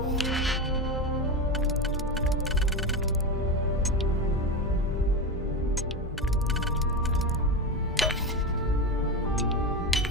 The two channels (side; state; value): both; normal; correlation 0.18